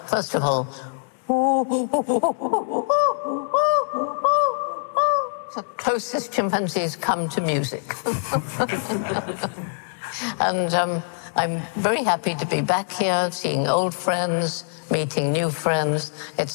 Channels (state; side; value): silent; right; digital silence